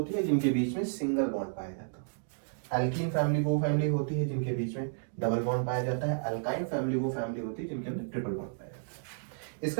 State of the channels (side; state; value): left; silent; digital silence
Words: है जिनके बीच में सिंगल बॉन्ड पाया जाता है, एल्कीन फैमिली वो फैमिली होती है जिनके बीच में डबल बॉन्ड पाया जाता है, एल्काइन फैमिली वो फैमिली होती है जिनके अंदर ट्रिपल बॉन्ड पाया जाता है।